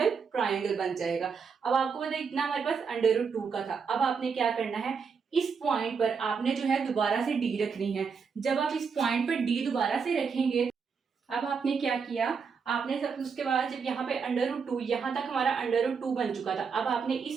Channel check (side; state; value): left; quieter; 5.8 dB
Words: ट्रायंगल बन जाएगा। अब आपको पता है इतना हमारे पास √2 का था। अब आपने क्या करना है, इस पॉइंट पर आपने जो है दोबारा से डी रखनी है। जब आप इस पॉइंट पर डी दोबारा से रखेंगे, अब आपने क्या किया, आपने सब उसके बाद जब यहाँ पे √2 यहाँ तक हमारा √2 बन चुका था, अब आपने